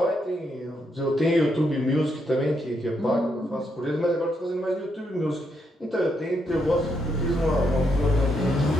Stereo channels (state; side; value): normal; both; correlation 0.78